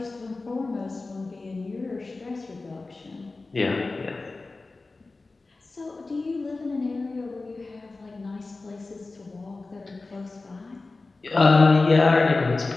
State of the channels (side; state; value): right; quieter; 3.5 dB